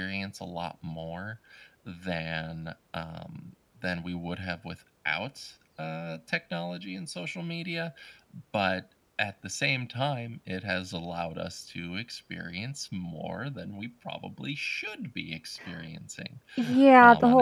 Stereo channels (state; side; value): identical; both; correlation 1.00